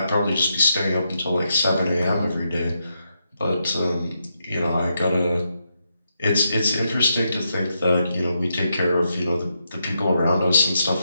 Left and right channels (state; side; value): inverted; both; correlation -0.82